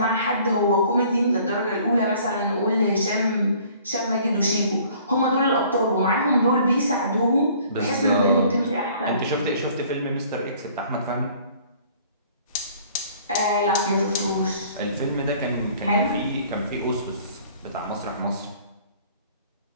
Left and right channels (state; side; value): inverted; both; correlation -0.54